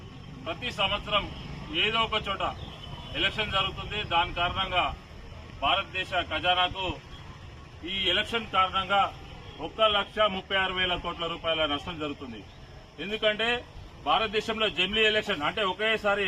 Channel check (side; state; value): both; identical; correlation 1.00